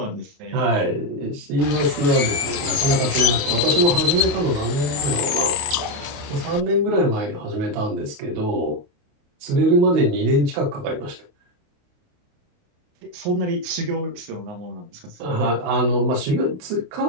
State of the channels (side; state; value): left; late; 28 ms